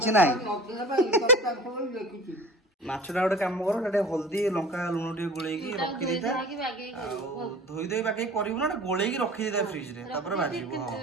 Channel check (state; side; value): normal; both; correlation 0.39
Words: ना माछटा गोटे कम कर हल्दी लंका लुण टे गोल रखी दे धोई धोई बाकी कर गोल रखी दे फ्रिज रे भाजी